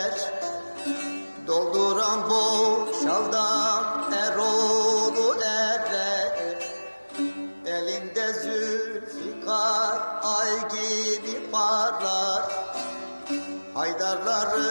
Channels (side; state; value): both; inverted; correlation -1.00